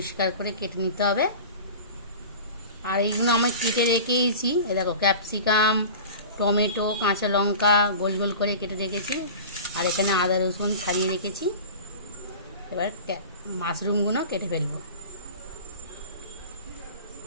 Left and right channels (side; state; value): both; inverted; correlation -0.36